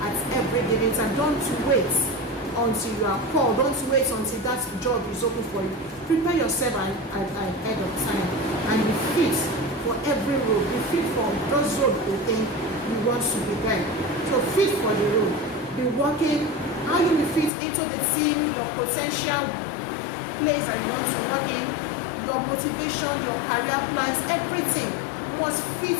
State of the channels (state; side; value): drops out; right; at 17.5 s